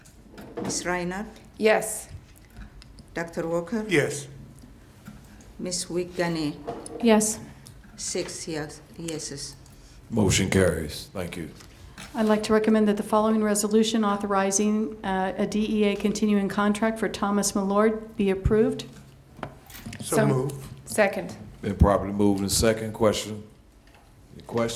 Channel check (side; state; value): both; identical; correlation 1.00